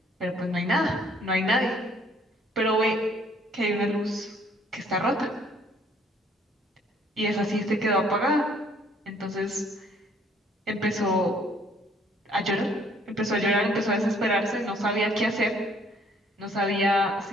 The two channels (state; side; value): normal; both; correlation 0.61